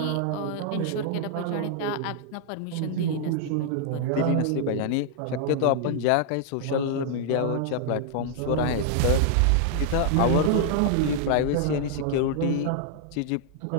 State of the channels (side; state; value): both; different; correlation -0.01